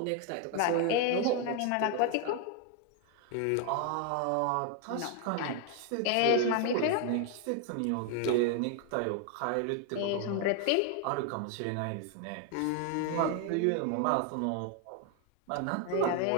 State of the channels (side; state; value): both; different; correlation 0.01